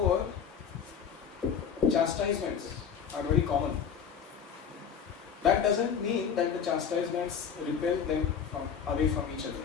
chastisements are very common. That doesn't mean that the chastisements repel them away from each other.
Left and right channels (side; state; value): right; quieter; 7.3 dB